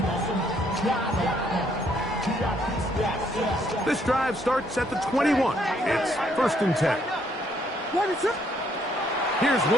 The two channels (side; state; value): both; normal; correlation 0.69